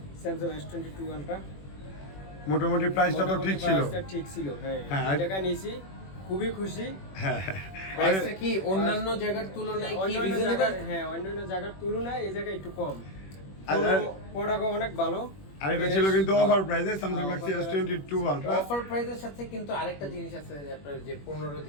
স্যামসাং S22 আলট্রা মোটামুটি প্রাইসটা তো ঠিক ছিল। ঠিক ছিল, হ্যাঁ। হ্যাঁ, এই টাকা নিয়েছি, খুবই খুশি। হ্যাঁ প্রাইসটা কি অন্যান্য জায়গার তুলনায় কি অন্যান্য রিজনেবল? জায়গার, হ্যাঁ, অন্যান্য জায়গার তুলনায় এই জায়গায় একটু কম। প্রোডাক্ট অনেক ভালো। আর এটা ছিল কিন্তু অফার প্রাইসে Samsung Galaxy S22 ultra. Offer প্রাইসের সাথে কিন্তু আরেকটা জিনিস আছে যে আপনার যে 15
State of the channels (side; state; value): right; late; 21 ms